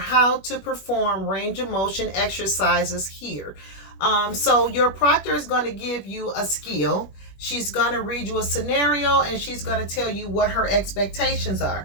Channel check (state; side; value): late; right; 21 ms